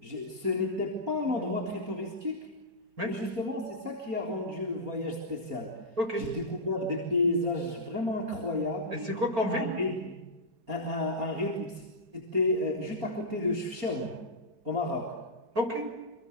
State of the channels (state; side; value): late; left; 4.3 ms